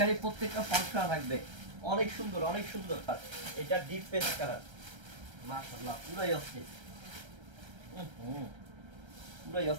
প্রত্যেকটা ফলস করা থাকবে। অনেক সুন্দর, অনেক সুন্দর। এটা ডিপ পেস্ট কালার, মাশাআল্লাহ পুরাই অস্থির, পুরাই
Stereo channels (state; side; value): late; left; 1.3 ms